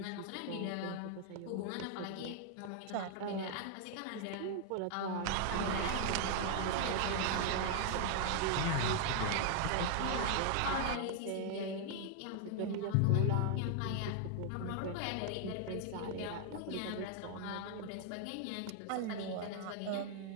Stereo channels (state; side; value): different; both; correlation 0.00